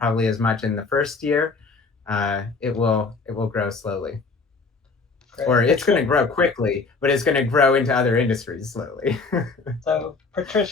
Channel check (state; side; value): quieter; right; 4.2 dB